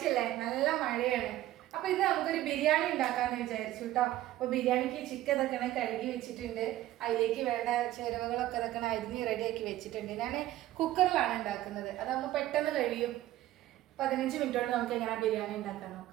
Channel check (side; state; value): left; quieter; 14.7 dB